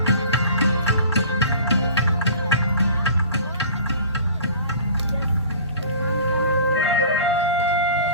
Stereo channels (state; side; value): inverted; both; correlation -0.44